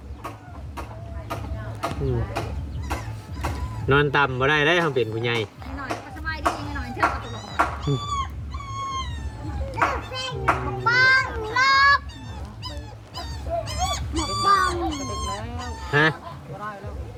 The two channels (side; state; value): both; identical; correlation 1.00